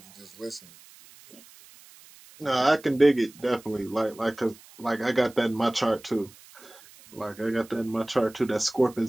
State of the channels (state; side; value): noise; right; hiss, 23 dB below the sound